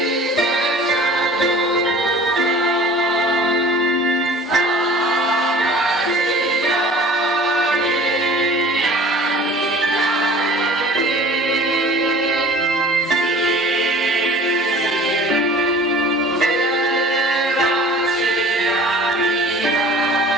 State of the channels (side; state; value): both; normal; correlation 0.45